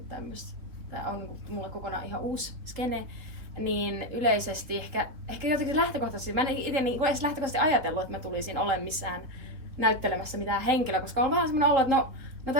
tämmöistä. Tää on niinku mulle kokonaan ihan uusi skene. Niin yleisesti ehkä jotenkin lähtökohtaisesti, mä en itse niinku edes lähtökohtaisesti ajatellut, että mä tulisin olemaan missään näyttelemässä mitään henkilöä, koska on vähän semmoinen olo, että no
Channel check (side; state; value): left; late; 3.8 ms